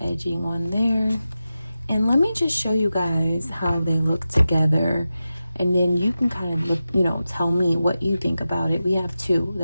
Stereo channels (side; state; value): both; inverted; correlation -0.92